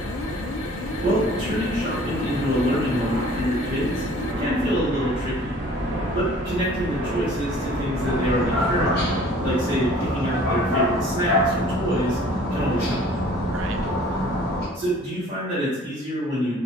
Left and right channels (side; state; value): both; normal; correlation 0.51